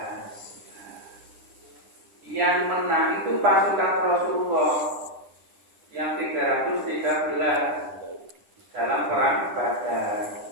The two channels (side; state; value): left; late; 9.9 ms